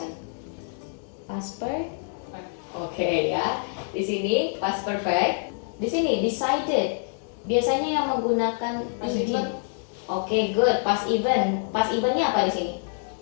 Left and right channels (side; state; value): right; silent; 59 dB below the other